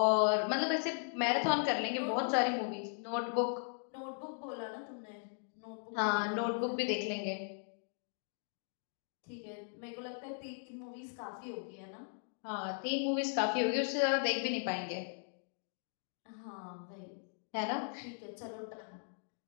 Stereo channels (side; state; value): right; silent; 53 dB below the other